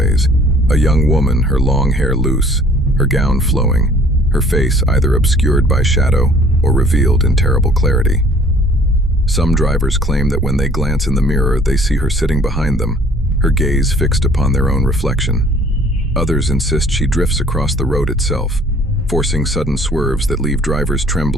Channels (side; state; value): both; normal; correlation 0.55